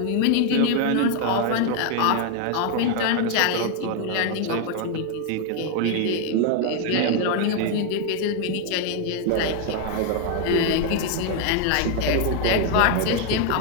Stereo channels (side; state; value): both; different; correlation 0.01